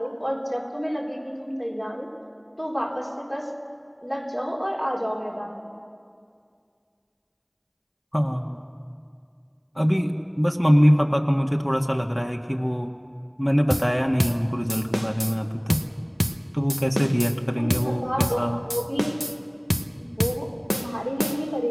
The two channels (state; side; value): identical; both; correlation 1.00